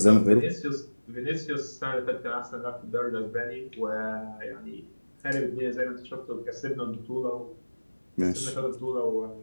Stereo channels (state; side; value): inverted; both; correlation -1.00